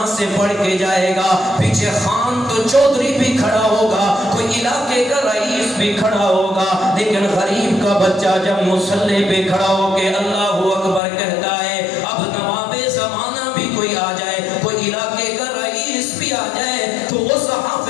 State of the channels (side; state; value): right; drops out; at 11.0 s